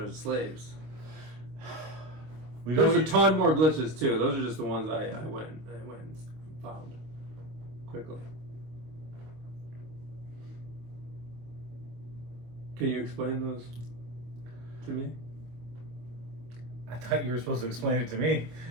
slaves. We There's don't a ton more glitches too. Those are just the ones I went and found quickly. Can you explain those to me? I thought you were supposed to explain it to me.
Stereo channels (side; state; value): left; late; 25 ms